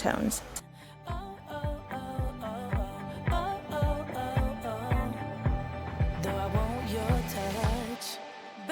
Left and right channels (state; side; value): identical; both; correlation 1.00